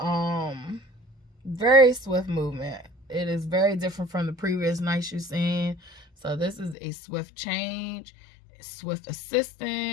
very swift movement. It is very different from the previous knights you've seen. So this is a swift change, swift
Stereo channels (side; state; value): right; drops out; at 6.8 s